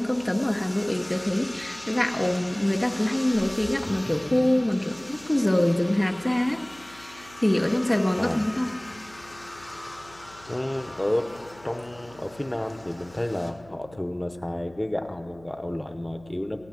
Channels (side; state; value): left; noise; hum, 24 dB below the sound